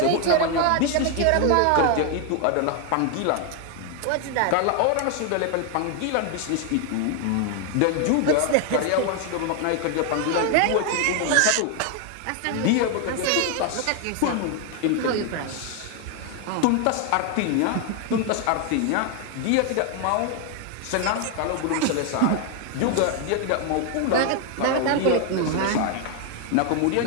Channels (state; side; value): different; both; correlation 0.01